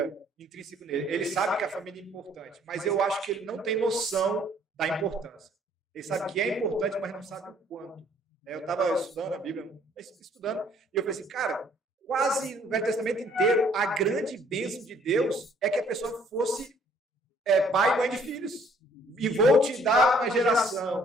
intrínseco nele. Ele sabe que a família é importante, mas eu acho que ele não tem noção da importância. Ele sabe que é importante, mas não sabe o quanto. Eu estava estudando a Bíblia, e eu falei assim, cara, quase no Velho Testamento inteiro, a grande bênção de Deus é que a pessoa fosse pai e mãe de filhos. E vou te dar uma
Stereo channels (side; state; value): both; normal; correlation 0.61